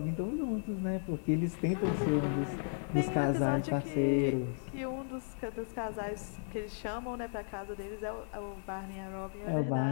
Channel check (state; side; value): silent; right; digital silence